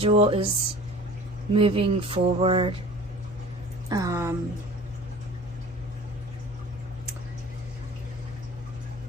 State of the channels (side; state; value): both; normal; correlation 0.43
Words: is moving forward